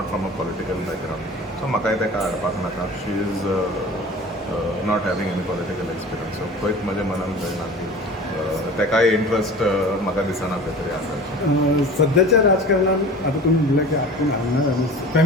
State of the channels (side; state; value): both; normal; correlation 0.39